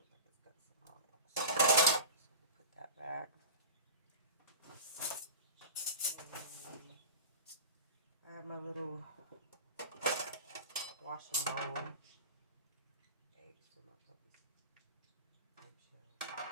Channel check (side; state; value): both; inverted; correlation -0.32